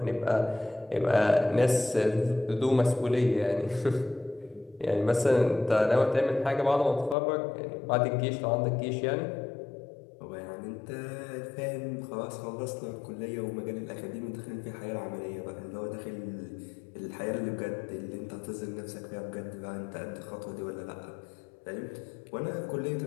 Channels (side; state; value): right; drops out; at 7.2 s